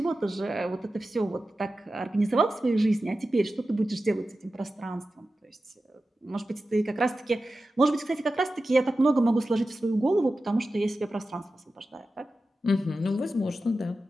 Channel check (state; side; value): normal; both; correlation 0.93